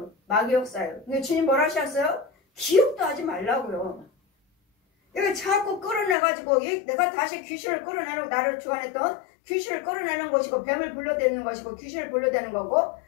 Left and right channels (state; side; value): drops out; right; at 6.2 s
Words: 마귀 역사예요. 근데 주님 뭐라 하셨어요? 기억도 하지 말라고요. 이거 자꾸 끌어내가지고 내가 다시 귀신을 끌어내는, 나를 주관했던 귀신을 끌어내는 것이고, 뱀을 불러대는 것이고, 귀신을 불러대는 거고,